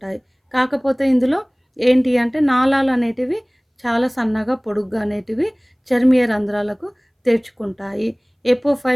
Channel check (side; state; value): both; identical; correlation 1.00